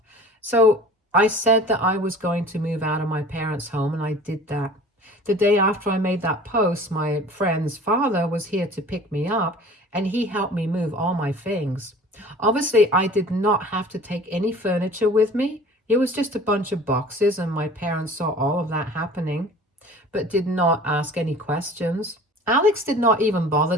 So, I said that I was going to move out of my parents' home, and I did that. The day after I made that post, my friend's father was here to pick me up, and he helped me move all my things. Obviously, I did not have to take any furniture with me. It was just a bunch of boxes, and my parents saw all of that happening, but did not ask any questions. Alex did not even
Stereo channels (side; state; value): both; normal; correlation 0.44